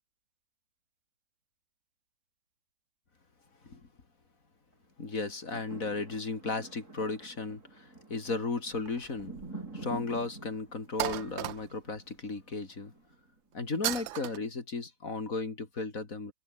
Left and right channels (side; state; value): right; late; 3.2 ms